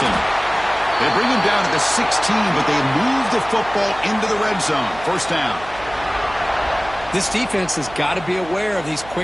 They bring him down at the 16, but they move the football into the red zone. 1st down. This defense has got to be aware of these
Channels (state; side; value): noise; right; hum, 17 dB below the sound